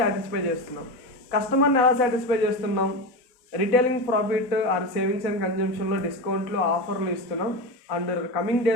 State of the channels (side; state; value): right; late; 4.0 ms